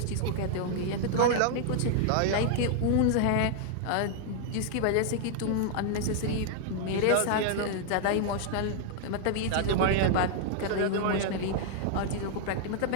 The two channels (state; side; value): different; both; correlation 0.00